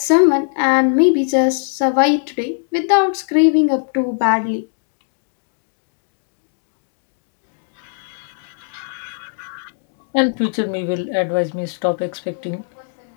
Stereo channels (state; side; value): silent; right; 66 dB below the other